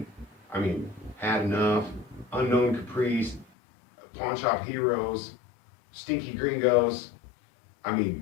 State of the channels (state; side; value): drops out; right; at 3.5 s